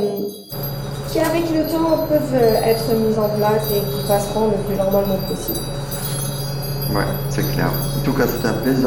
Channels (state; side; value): identical; both; correlation 1.00